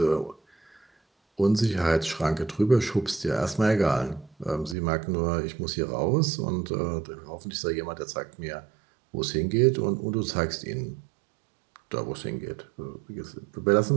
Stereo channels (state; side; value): drops out; left; at 4.8 s